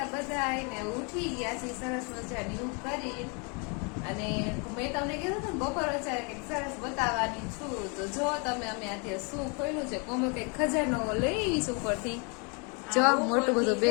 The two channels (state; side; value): quieter; right; 33.8 dB